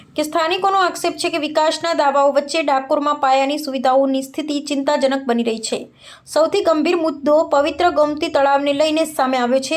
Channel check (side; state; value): both; identical; correlation 1.00